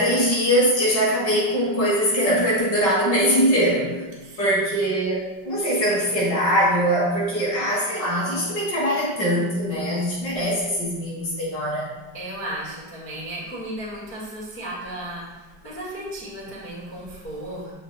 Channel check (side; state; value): right; late; 5.0 ms